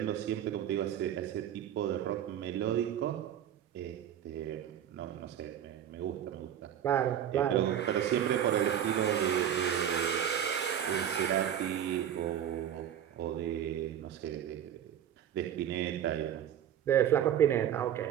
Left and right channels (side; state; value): left; quieter; 10.0 dB